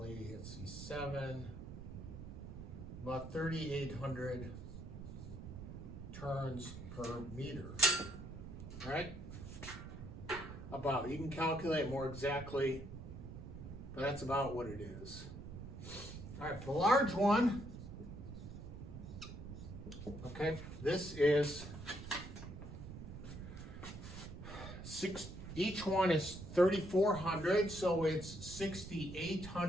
let's see, 7, about 3,800 turns per meter, right? About, you can calculate more exactly, but that's about what it is. All right, for the large one, okay, this is each one is 3,400, so it's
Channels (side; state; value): right; noise; rumble, 10 dB below the sound